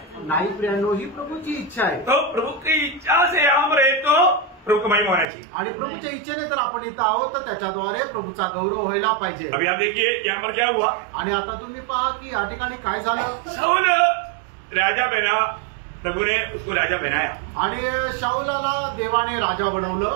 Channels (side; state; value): left; drops out; at 5.2 s